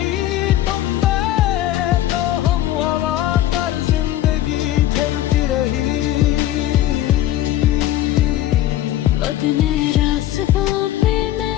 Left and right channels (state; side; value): quieter; right; 13.4 dB